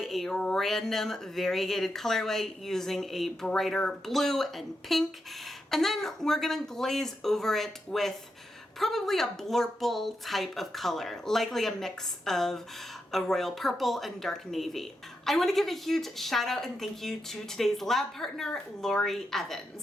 a random variegated colorway using a brighter blue and pink, and then we're gonna glaze over it with probably a blurple type of color, likely a mix of a royal purple and dark navy. I want to give a huge shout out and thank you to today's lab partner, Lori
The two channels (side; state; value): both; normal; correlation 0.85